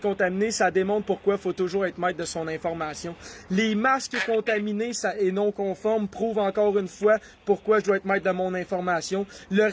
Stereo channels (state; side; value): identical; both; correlation 1.00